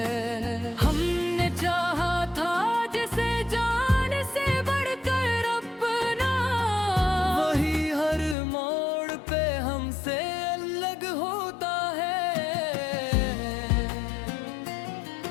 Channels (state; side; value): drops out; right; at 8.3 s